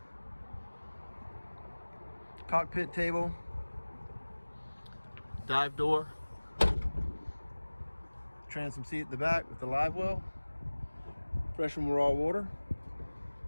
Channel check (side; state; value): both; inverted; correlation -1.00